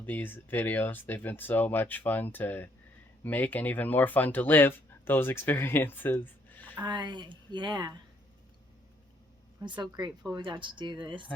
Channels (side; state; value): both; normal; correlation 0.68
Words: these videos. They've been so much fun to make and even more fun to live those experiences. Yeah. I'm so grateful we got to do this.